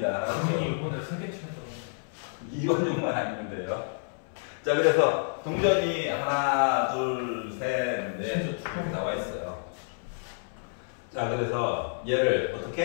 이번에 선택시켰잖아. 이완용만 아니면 돼요. 자, 그래서 동전이 하나, 둘, 셋, 넷 나와 있어요. 자, 그래서 얘를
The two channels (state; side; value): silent; right; 58 dB below the other